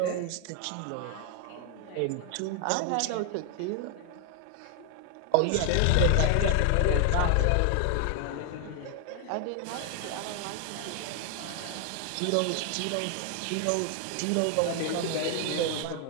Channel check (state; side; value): different; both; correlation 0.00